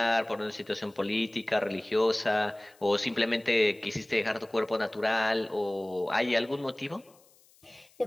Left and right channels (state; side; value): noise; left; hiss, 30 dB below the sound